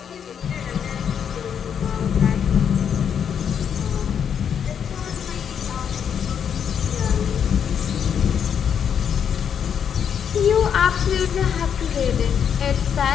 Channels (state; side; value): quieter; right; 8.0 dB